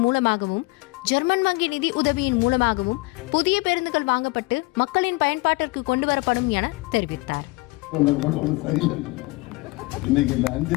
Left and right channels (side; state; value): right; quieter; 23.8 dB